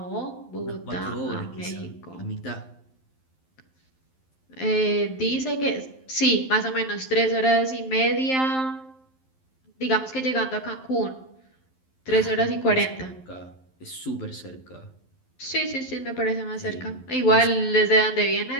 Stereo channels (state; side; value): late; right; 11 ms